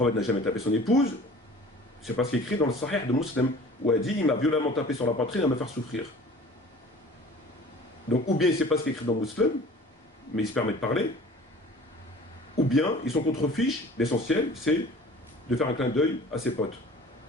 n'a jamais tapé son épouse, c'est pas ce qui est écrit dans le Sahih de Muslim, où elle dit « Il m'a violemment tapé sur la poitrine à me faire souffrir. » Donc, ou bien c'est pas ce qui est écrit dans le Muslim, mais il se permet de parler, ou bien ils sont contre-fiches, l'essentiel, c'est de faire un clin d'œil à ses potes.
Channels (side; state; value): both; normal; correlation 0.45